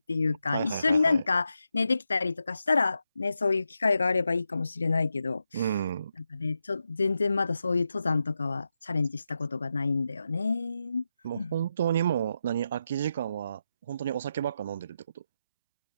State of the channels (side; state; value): both; inverted; correlation -0.86